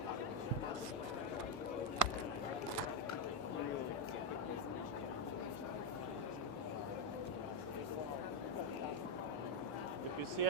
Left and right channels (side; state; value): both; normal; correlation 0.05